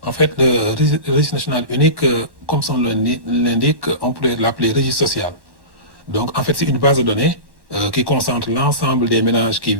En fait, le registre national unique, comme son nom l'indique, on pourrait l'appeler registre social. Donc, en fait, c'est une base de données qui concentre l'ensemble des ménages qui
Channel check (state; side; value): late; left; 1.1 ms